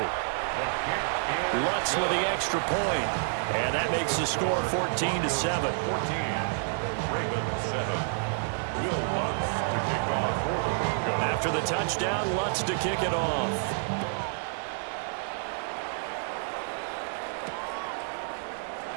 Lutz with the extra point. And that makes the score 14-7. After the touchdown, Lutz to kick it off.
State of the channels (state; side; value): silent; left; 59 dB below the other